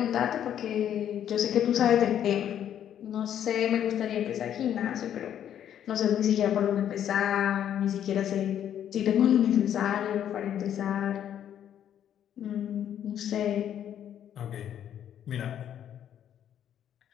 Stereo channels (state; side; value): quieter; right; 10.0 dB